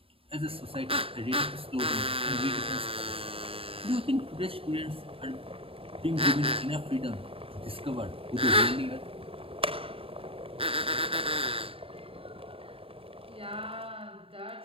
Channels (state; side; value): late; left; 0.27 ms